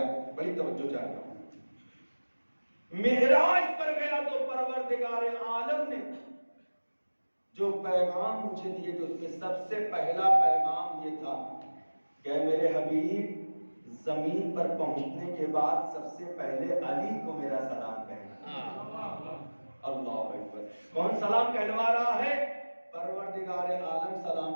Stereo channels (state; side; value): inverted; both; correlation -1.00